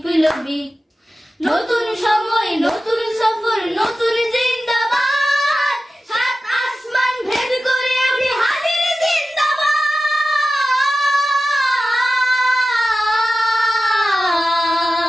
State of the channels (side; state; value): both; normal; correlation 0.94